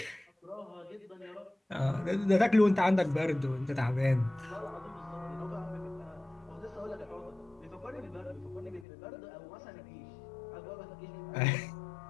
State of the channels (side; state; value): right; drops out; at 8.8 s